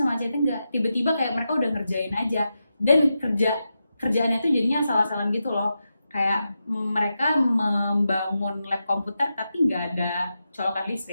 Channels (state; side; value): inverted; both; correlation -0.89